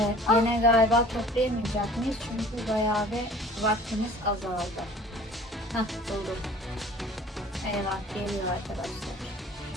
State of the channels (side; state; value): both; normal; correlation 0.48